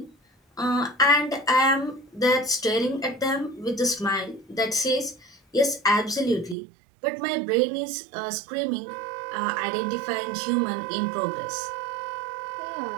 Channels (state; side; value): drops out; left; at 6.6 s